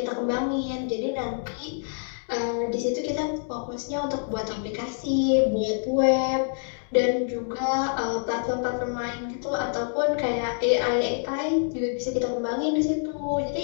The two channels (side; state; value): right; silent; 61 dB below the other